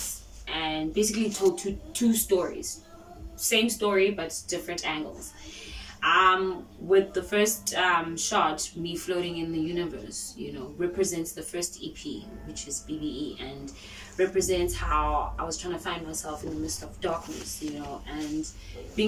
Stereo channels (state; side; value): identical; both; correlation 1.00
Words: and basically told two stories, same story but different angles. With the first shot, me floating in the universe, represents the first EP, which is B.B.E, and represents how I was trying to find myself in the midst of darkness, and